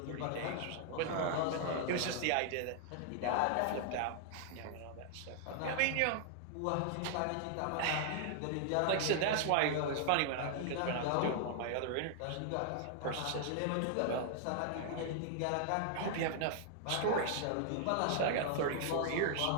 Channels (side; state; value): both; different; correlation -0.01